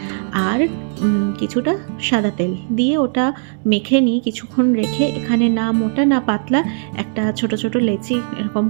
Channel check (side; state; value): left; silent; 59 dB below the other